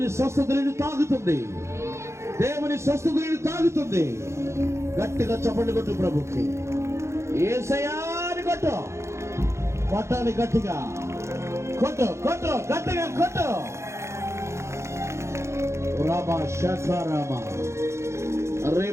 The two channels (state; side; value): late; left; 0.13 ms